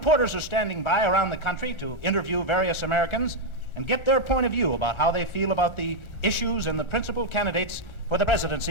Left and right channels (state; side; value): late; right; 1.4 ms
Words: are standing by around the country to interview various Americans and get their point of view about how they feel about the issues and the principal candidates for the